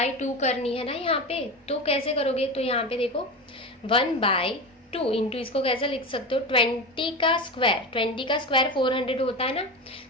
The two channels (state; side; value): normal; both; correlation 0.23